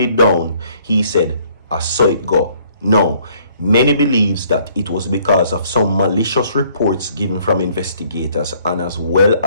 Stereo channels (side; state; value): both; inverted; correlation -0.62